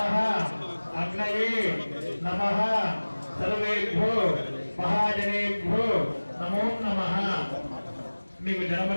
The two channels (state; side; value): inverted; both; correlation -1.00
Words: అగ్నయే నమః సర్వేభ్యో మహాజనేభ్యో నమో నమః. మీకు